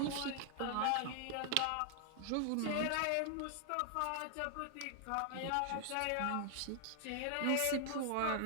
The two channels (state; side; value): different; both; correlation 0.00